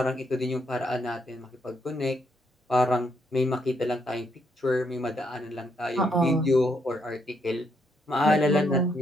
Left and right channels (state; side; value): normal; both; correlation 0.75